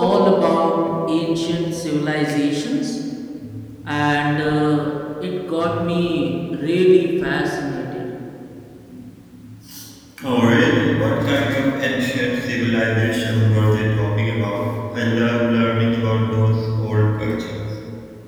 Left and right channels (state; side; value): identical; both; correlation 1.00